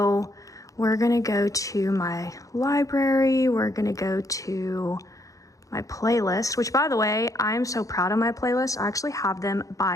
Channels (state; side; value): late; right; 0.16 ms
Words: we're gonna go to my library. We're gonna go to my playlist, which, by the way, I'm so proud of my playlist. I actually have them